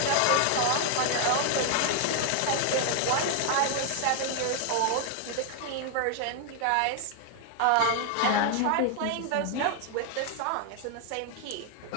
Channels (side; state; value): both; different; correlation 0.00